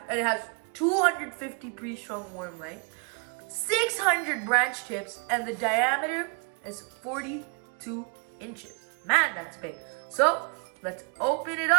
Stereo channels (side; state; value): left; quieter; 37.7 dB